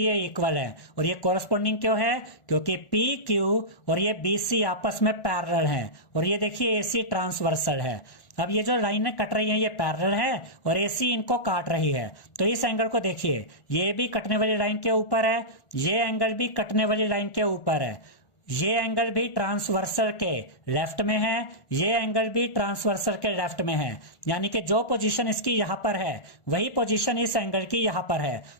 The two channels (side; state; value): right; late; 1.4 ms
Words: इक्वल है। और ये कोरस्पोंडिंग क्यों है? क्योंकि पी क्यू और ये बी सी आपस में पैरेलल है, और ये देखिए ए सी ट्रांसवर्सल है। अब ये जो लाइनें कट रही हैं ये पैरेलल है और एसी इनको काट रही है, तो इस एंगल को देखिए ये भी कटने वाली लाइन के ऊपर है, ये एंगल भी कटने वाली लाइन के ऊपर है, ये एंगल भी ट्रांसवर्सल के लेफ्ट में है, ये एंगल भी ट्रांसवर्सल के लेफ्ट में है, यानी कि जो पोजीशन इसकी यहाँ पर है वही पोजीशन इस एंगल की यहाँ पर है।